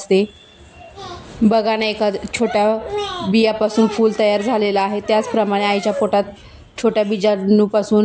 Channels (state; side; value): identical; both; correlation 1.00